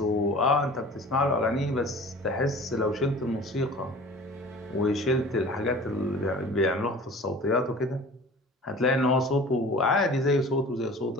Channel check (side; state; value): both; normal; correlation 0.43